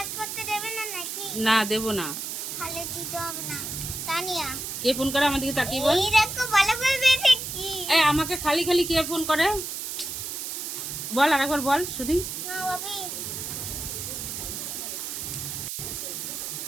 করতে দেবে না নাকি? না দেবো না। খালে দিতে হবে না। তানিয়া কে ফোন করে আমার দিকে তাকিয়ে বল। এই দেখো ভালো করে বেঁধে কি। এই আমাকে খালি খালি কে ফোন করে? বল আরেকবার বল শুনি। না বাপি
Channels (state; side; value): noise; right; hiss, 5 dB below the sound